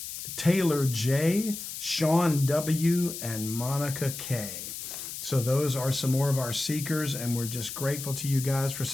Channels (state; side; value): noise; left; hiss, 8 dB below the sound